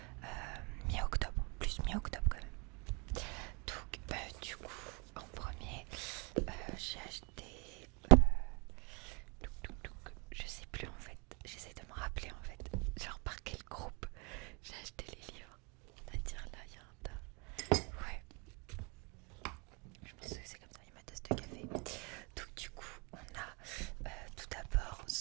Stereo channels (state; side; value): quieter; left; 30.2 dB